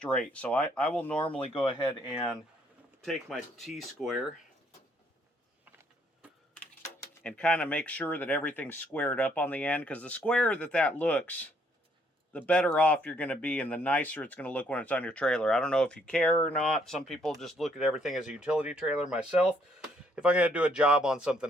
So I will normally go ahead and take my T-square and kind of make sure that everything's squared up on the end, because the squarer that looks, the better off you're going to be and the nicer it's going to look when it's on your trailer. I don't know if you care or not. Some people just look at everything as a utility trailer. Myself, if I'm going to do a job on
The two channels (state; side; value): normal; both; correlation 0.68